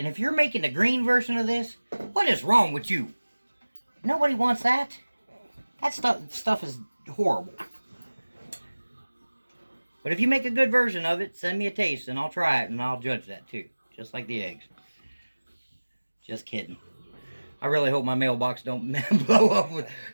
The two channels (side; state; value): both; inverted; correlation -1.00